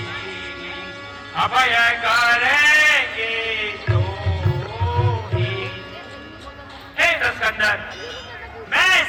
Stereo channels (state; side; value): identical; both; correlation 1.00